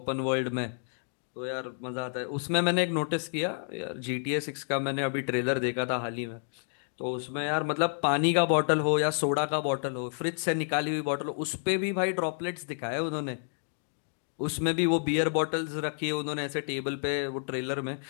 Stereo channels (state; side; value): silent; right; digital silence